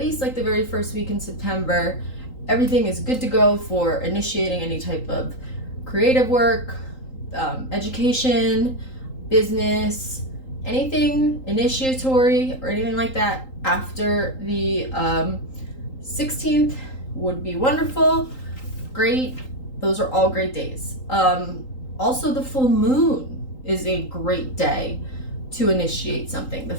like the very first week in September, everything is good to go for initiating any type of creative work, education, business, anything initiatory or anything like that after the 16th would be wonderful. Great. Those are all great days. Also, the full moon is a great day to initiate something. The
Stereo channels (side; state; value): right; late; 3.8 ms